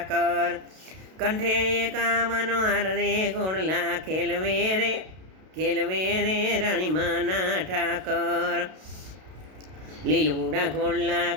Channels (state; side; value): late; left; 32 ms